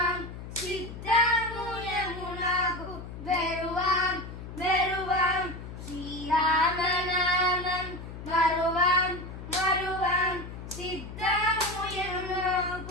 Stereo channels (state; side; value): noise; left; hum, 11 dB below the sound